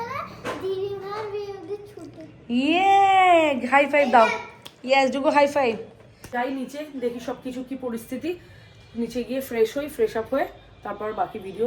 ইয়ে, হাই ফাইভ দাও। ইয়েস, ডুগো হাই ফাইভ। যাই নিচে, দেখি সব কিছু কি পরিস্থিতি। নিচে গিয়ে ফ্রেশ আপ হয়ে তারপর বাকি ভিডিও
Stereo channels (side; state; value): both; identical; correlation 1.00